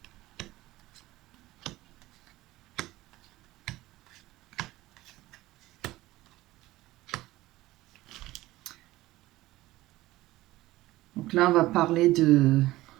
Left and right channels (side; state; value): left; quieter; 17.6 dB